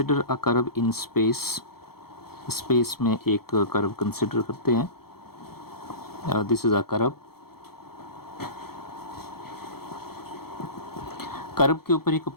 a curve in space. Space में एक कर्व कंसिडर करते हैं। This is a curve. Curve के ऊपर एक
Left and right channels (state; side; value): late; right; 0.95 ms